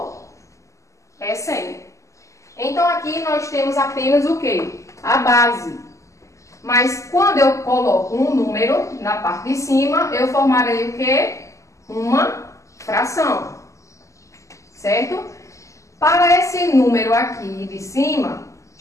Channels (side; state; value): right; late; 0.15 ms